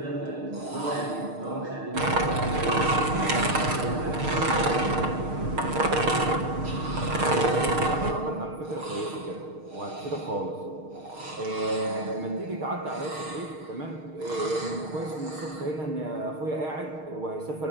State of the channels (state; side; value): late; left; 6.5 ms